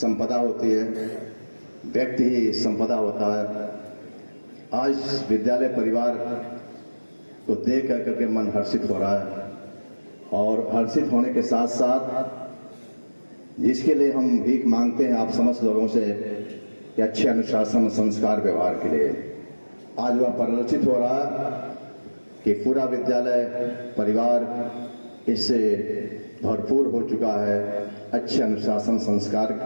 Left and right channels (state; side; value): inverted; both; correlation -1.00